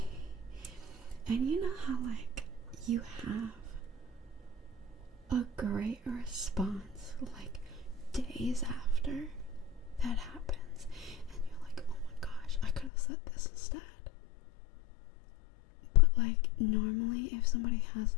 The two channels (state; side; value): drops out; right; at 12.9 s